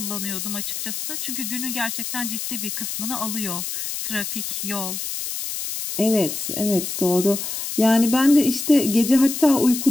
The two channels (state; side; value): noise; left; hiss, 5 dB below the sound